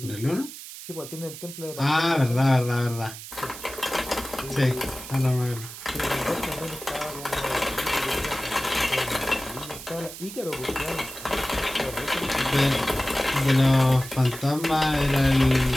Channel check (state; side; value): noise; right; hiss, 12 dB below the sound